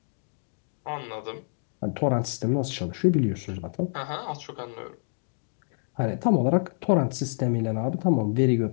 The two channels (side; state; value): right; silent; digital silence